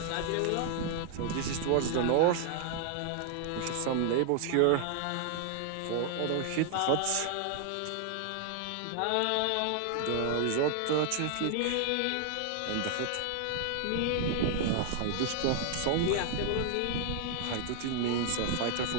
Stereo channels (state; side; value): different; both; correlation 0.00